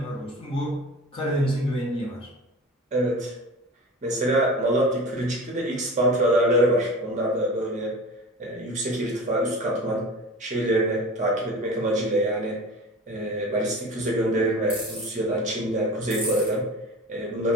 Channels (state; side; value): normal; both; correlation 0.35